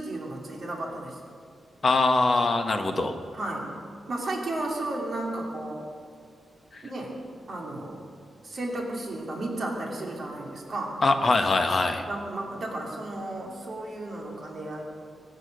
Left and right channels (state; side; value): normal; both; correlation 0.88